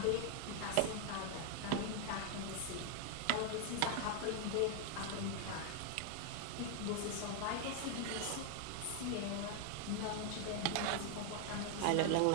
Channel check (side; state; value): both; different; correlation 0.00